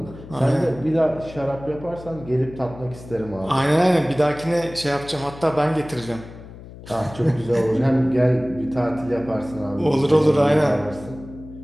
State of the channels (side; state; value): left; noise; hum, 16 dB below the sound